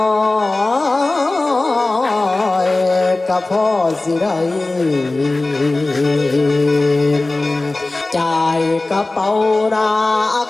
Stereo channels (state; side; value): quieter; right; 3.0 dB